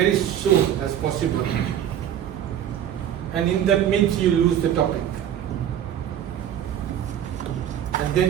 soon as possible. And in that midst, you lose the topic. And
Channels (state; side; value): quieter; left; 10.2 dB